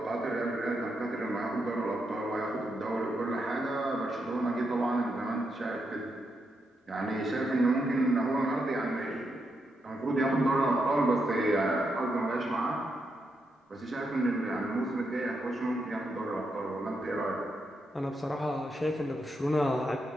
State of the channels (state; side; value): normal; both; correlation 0.82